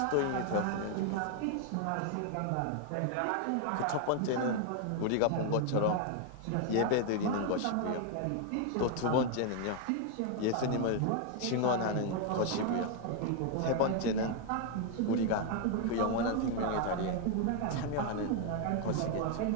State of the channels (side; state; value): both; different; correlation 0.01